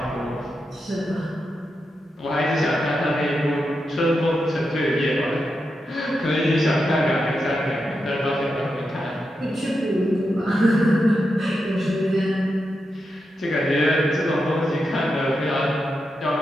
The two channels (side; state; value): both; normal; correlation 0.87